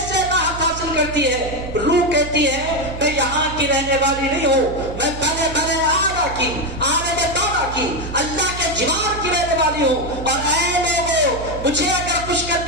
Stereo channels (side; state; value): right; noise; hum, 10 dB below the sound